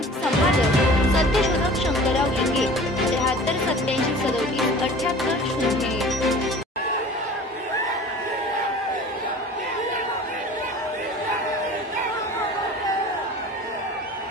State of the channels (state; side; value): normal; both; correlation 0.42